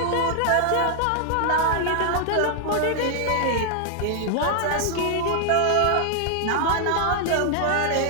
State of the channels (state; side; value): different; both; correlation 0.00